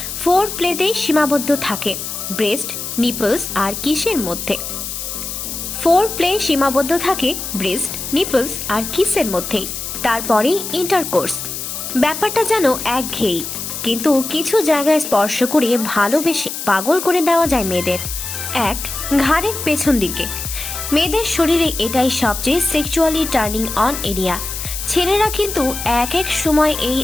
ফোর প্লেতেই সীমাবদ্ধ থাকে ব্রেস্ট, নিপলস আর কিসের মধ্যে। ফোর প্লে সীমাবদ্ধ থাকে ব্রেস্ট, নিপলস আর কিসের মধ্যেই, তারপরেই ইন্টারকোর্স। ব্যাপারটা যেন একঘেয়েই, কিন্তু কিছু জায়গায় স্পর্শ করে ভালোবেসে পাগল করে দেওয়া যায় মেয়েদের। এক, ঘাড়ের পেছন দিকে। মেয়েদের শরীরে এটাই সবচেয়ে সেক্সুয়ালি টার্নিং অন এরিয়া। ছেলেরা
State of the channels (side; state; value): left; noise; hiss, 6 dB below the sound